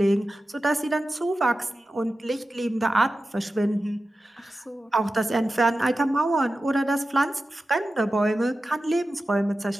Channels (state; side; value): normal; both; correlation 0.93